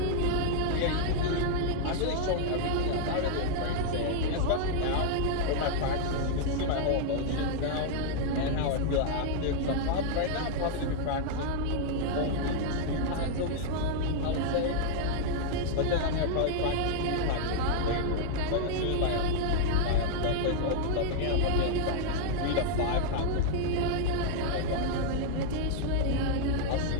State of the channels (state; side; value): different; both; correlation 0.00